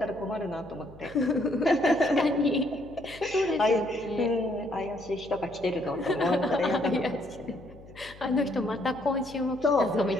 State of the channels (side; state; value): left; noise; hum, 20 dB below the sound